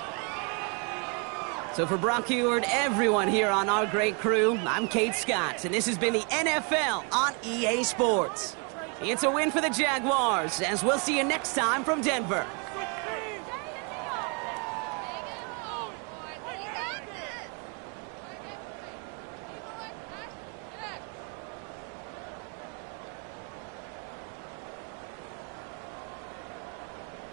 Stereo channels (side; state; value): left; quieter; 34.4 dB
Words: So for Brock Heward, everyone here on our great crew, I'm Kate Scott, and this has been the NFL on EA Sports. It's a win for the Jaguars, as we'll see you next time from Denver.